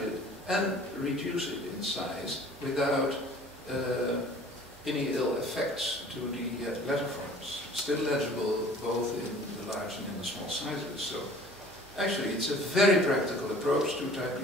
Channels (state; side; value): normal; both; correlation 0.49